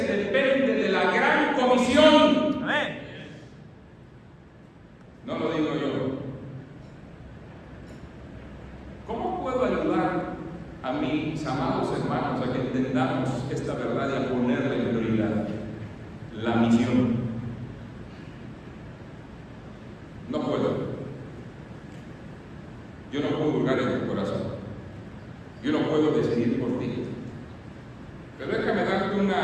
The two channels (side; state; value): both; identical; correlation 1.00